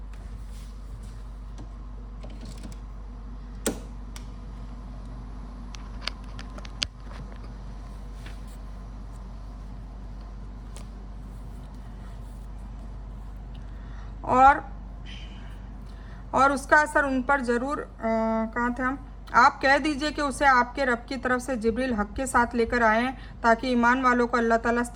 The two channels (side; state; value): both; identical; correlation 1.00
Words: और उसका असर उन पर ज़रूर कहाँ थे हम, आप कह दीजिए कि उसे आपके रब की तरफ से जिब्रील हक के साथ लेकर आए हैं ताकि ईमान वालों को अल्लाह ताला